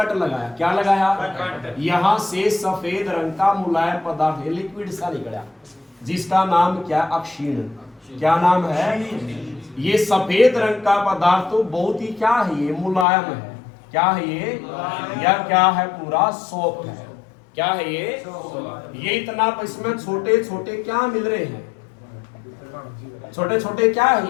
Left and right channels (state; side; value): drops out; right; at 13.1 s